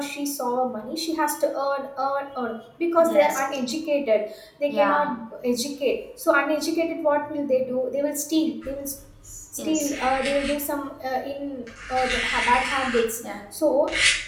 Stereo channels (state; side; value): identical; both; correlation 1.00